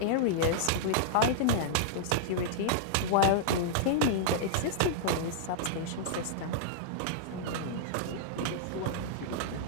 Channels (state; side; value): different; both; correlation -0.02